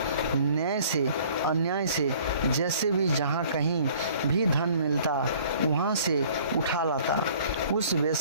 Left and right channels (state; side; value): inverted; both; correlation -0.53